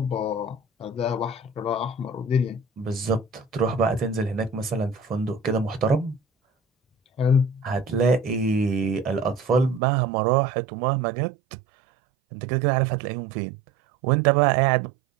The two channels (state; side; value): drops out; left; at 9.8 s